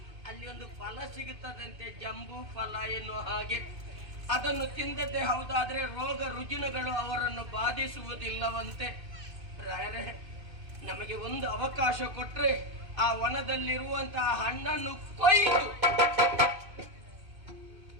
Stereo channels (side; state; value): left; late; 2.6 ms